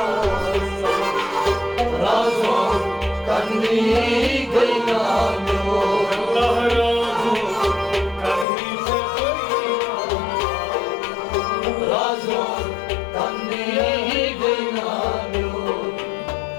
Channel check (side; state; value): right; drops out; at 8.5 s